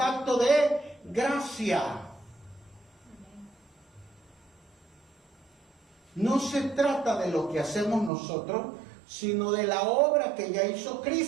de gracia. No se trata de lo que hacemos nosotros, sino de la obra que ya hizo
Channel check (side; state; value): left; drops out; at 8.1 s